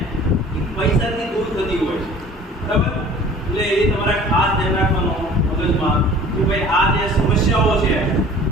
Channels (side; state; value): both; normal; correlation 0.47